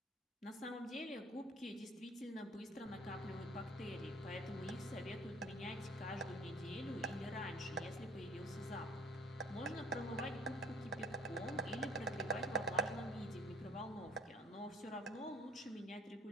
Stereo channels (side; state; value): both; normal; correlation 0.54